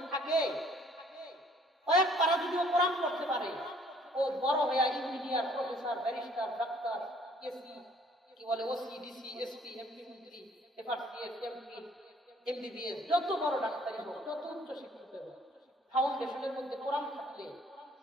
থাকে, কয়েক পারা যদি ও কোরআন পড়তে পারে, ও বড় হয়ে engineer, professor, barrister, doctor, AC, কি বলে ওসি, ডিসি, এসপি, এমপি, মন্ত্রী, এফআরসিএস, এমপি, এমবিবিএস, যত বড় ডাক্তারই হোক, যত উচ্চ শিক্ষিত হোক, ফাউন্ডেশনের মধ্যে কোরআন থাকলে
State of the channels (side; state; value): both; normal; correlation 0.59